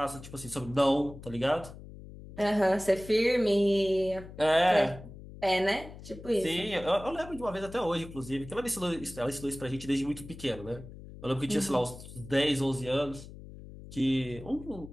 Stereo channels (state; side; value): noise; left; hum, 15 dB below the sound